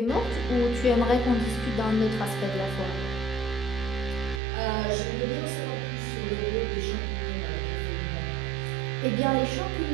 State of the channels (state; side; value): drops out; left; at 4.4 s